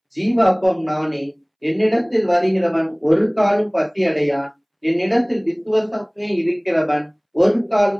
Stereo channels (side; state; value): both; identical; correlation 1.00